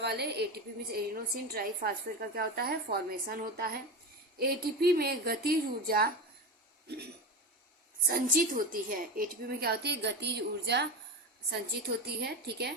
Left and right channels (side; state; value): both; normal; correlation 0.22